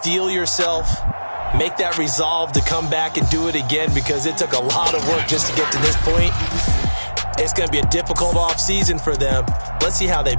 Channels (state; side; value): inverted; both; correlation -1.00